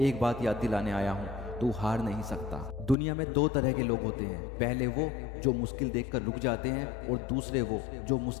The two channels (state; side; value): drops out; right; at 3.0 s